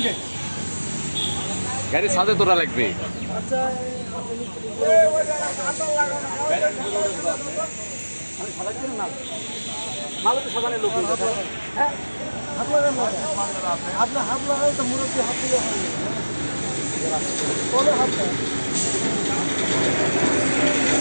গাড়ি সাথে তোরা লাগবে আপনার হাত লাগাই তো মুরব্বী হাত দিলে হাত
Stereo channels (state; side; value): inverted; both; correlation -1.00